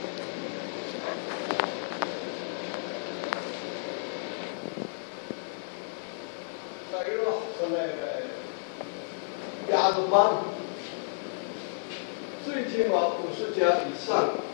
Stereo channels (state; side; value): silent; right; digital silence